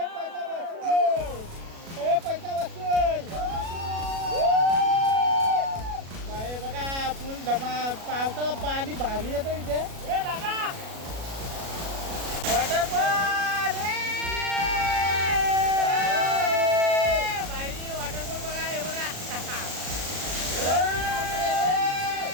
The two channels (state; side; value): late; left; 37 ms